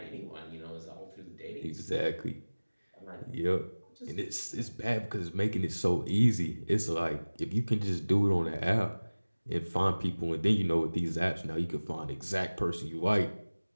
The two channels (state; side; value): inverted; both; correlation -1.00